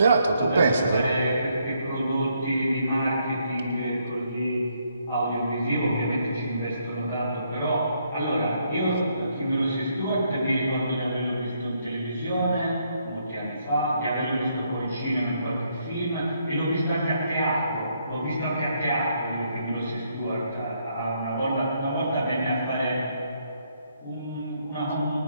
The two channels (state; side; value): inverted; both; correlation -0.73